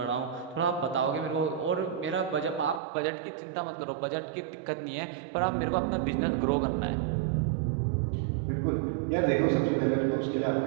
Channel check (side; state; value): left; drops out; at 2.8 s